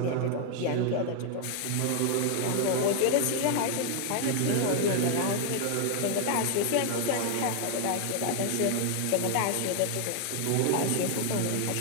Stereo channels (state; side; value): different; both; correlation 0.00